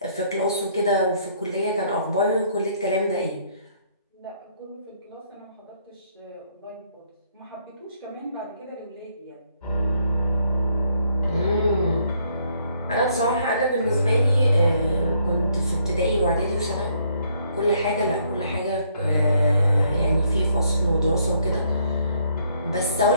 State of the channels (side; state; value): both; inverted; correlation -0.68